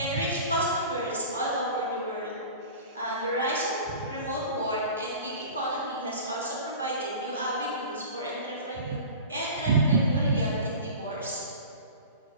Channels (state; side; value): inverted; both; correlation -0.37